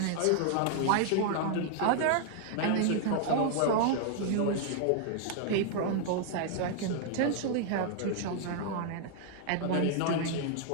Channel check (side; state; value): both; different; correlation 0.00